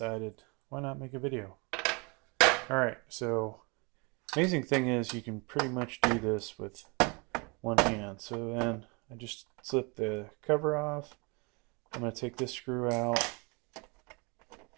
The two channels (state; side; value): quieter; left; 30.1 dB